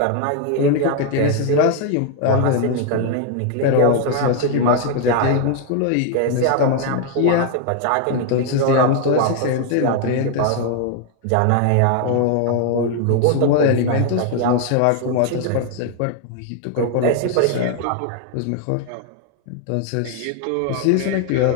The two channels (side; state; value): both; different; correlation 0.00